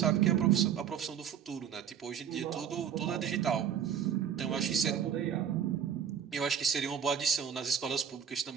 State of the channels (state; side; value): quieter; left; 8.6 dB